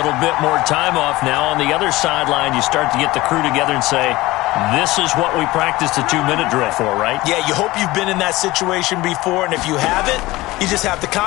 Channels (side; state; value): right; quieter; 19.2 dB